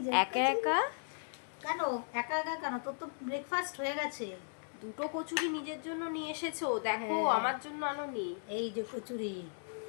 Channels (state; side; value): silent; right; digital silence